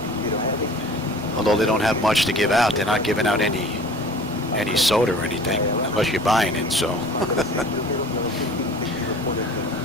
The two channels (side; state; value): both; normal; correlation 0.44